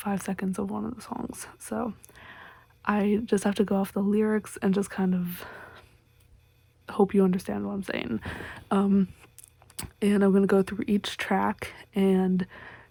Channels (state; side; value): identical; both; correlation 1.00